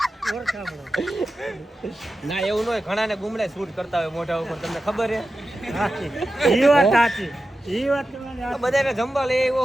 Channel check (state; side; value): normal; both; correlation 0.93